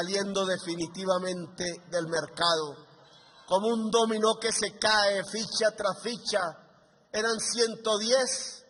definitivamente del mercado, como un dominó que se cae ficha tras ficha. Eran 110,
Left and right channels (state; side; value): identical; both; correlation 1.00